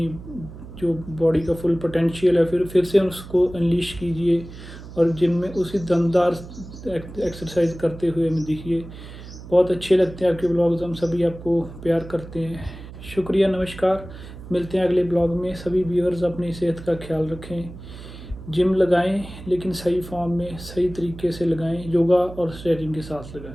जो बॉडी का फुल पोटेंशियल है फिर से उसको अनलीश कीजिए, और जिम में उसी दमदार एक्सरसाइज करते हुए हमें दिखिए। बहुत अच्छे लगते हैं आपके ब्लॉग्स, हम सभी आपको प्यार करते हैं। शुक्रिया, नमस्कार। मिलते हैं अगले ब्लॉग में। सभी व्यूअर्स अपनी सेहत का ख्याल रखें, जिम लगाएं लेकिन सही फॉर्म में, सही तरीके से लगाएं, योगा और स्ट्रेचिंग के साथ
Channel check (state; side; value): noise; right; hum, 14 dB below the sound